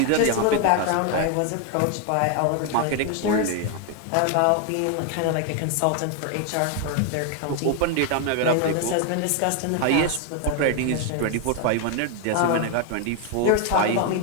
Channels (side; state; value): both; different; correlation 0.01